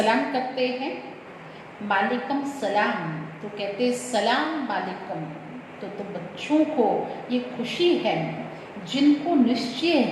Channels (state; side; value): identical; both; correlation 1.00